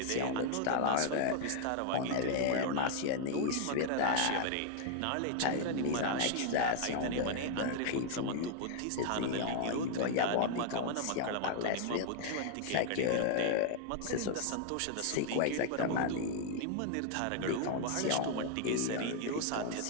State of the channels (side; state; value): both; different; correlation 0.00